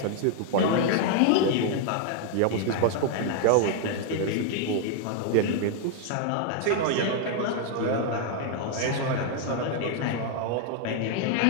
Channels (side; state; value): both; different; correlation 0.00